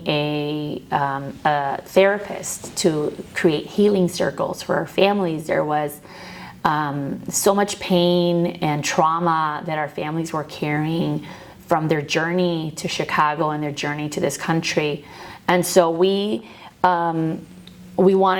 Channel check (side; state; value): both; identical; correlation 1.00